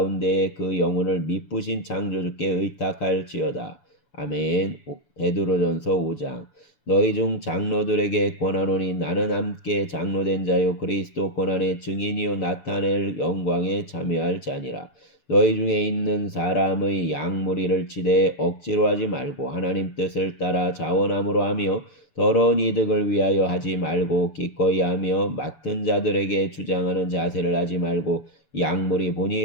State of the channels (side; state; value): right; late; 6.9 ms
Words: 그 영혼을 미쁘신 창조주께 의탁할지어다. 아멘. 베드로전서 5장. 너희 중 장로들에게 권하노니 나는 함께 장로된 자요 그리스도 고난의 증인이요 나타낼 영광에 참여할 자니라. 너희 중에 있는 사람의 양무리를 치되 억지로 하지 말고 하나님 뜻을 따라 자원함으로 하며 더러운 이득을 위하여 하지 말고 기꺼이 하며 맡은 자들에게 주장하는 자세를 하지 말고 양물이